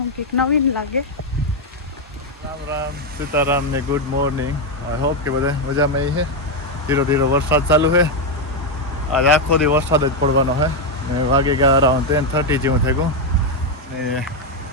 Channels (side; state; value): both; normal; correlation 0.04